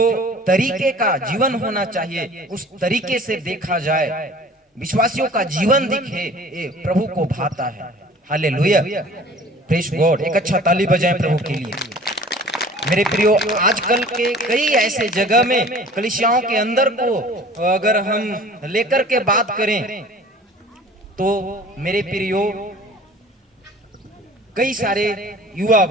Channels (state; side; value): normal; both; correlation 0.47